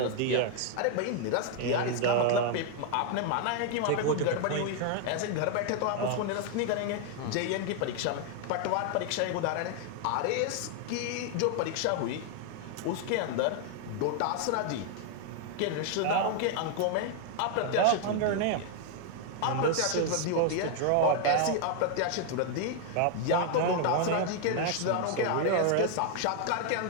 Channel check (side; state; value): both; different; correlation 0.00